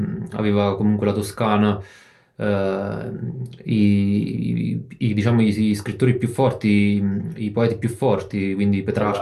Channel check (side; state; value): both; identical; correlation 1.00